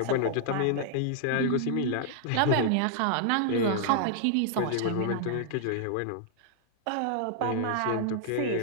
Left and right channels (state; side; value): different; both; correlation -0.01